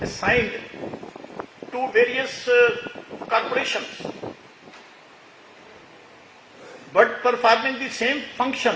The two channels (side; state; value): both; identical; correlation 1.00